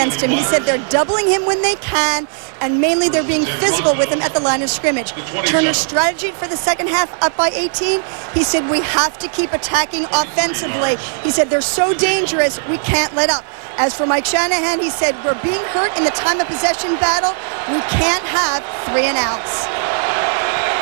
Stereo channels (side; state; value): left; silent; digital silence